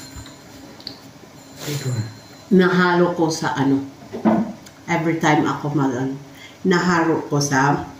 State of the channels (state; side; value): identical; both; correlation 1.00